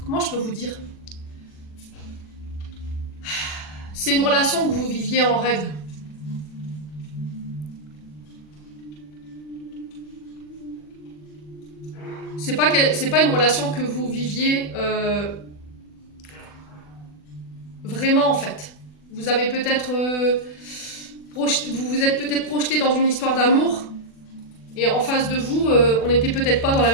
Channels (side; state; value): right; late; 40 ms